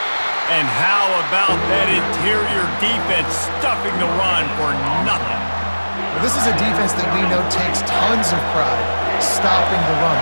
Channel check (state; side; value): inverted; both; correlation -1.00